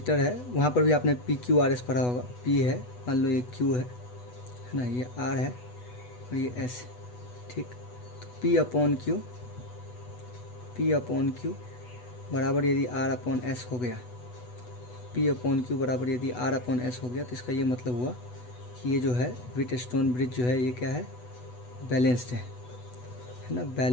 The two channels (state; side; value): late; right; 8.1 ms